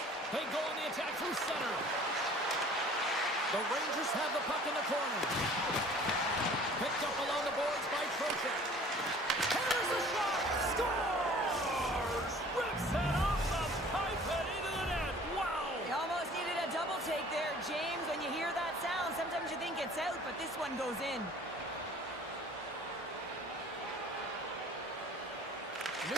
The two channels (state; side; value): normal; both; correlation 0.50